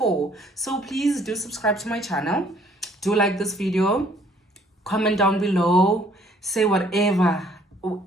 So please do subscribe to my channel. Do like this video, comment down below, say whatever or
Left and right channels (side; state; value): both; normal; correlation 0.61